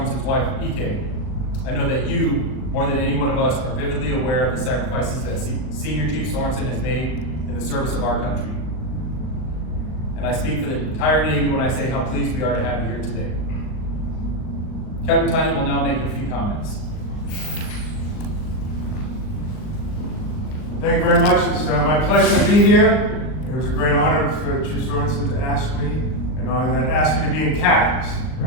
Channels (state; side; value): late; right; 39 ms